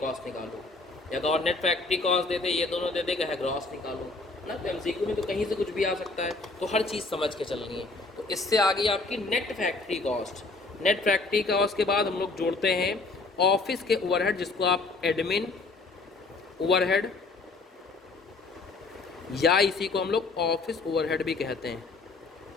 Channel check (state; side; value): quieter; right; 3.6 dB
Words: निकालो, या तो और नेट फैक्ट्री कॉस्ट दे दे, ये दोनों दे दे, कहे ग्रॉस निकालो ना। तो MCQ में तो कहीं से कुछ भी आ सकता है, तो हर चीज़ समझ के चलनी है। तो इससे आ गई आपकी net factory cost. Net factory cost के बाद हम लोग जोड़ते हैं ऑफिस के ओवरहेड, जिसको आप एडमिन ओवरहेड या इसी को हम लोग ऑफिस ओवरहेड भी कहते हैं,